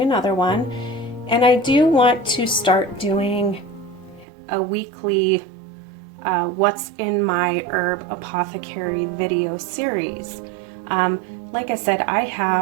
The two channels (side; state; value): left; drops out; at 4.2 s